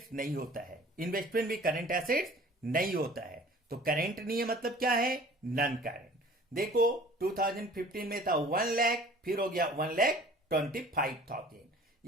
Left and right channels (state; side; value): normal; both; correlation 0.48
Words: नहीं होता है, इन्वेस्टमेंट भी करंट एसेट्स नहीं होता है। तो करंट नहीं है मतलब क्या है, नॉन करंट। देखो 2015 में था 1 लाख, फिर हो गया 1,25,000,